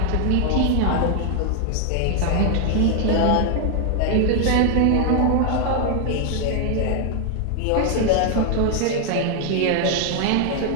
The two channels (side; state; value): both; different; correlation 0.00